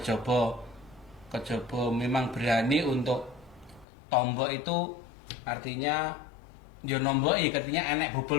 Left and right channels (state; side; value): drops out; right; at 3.9 s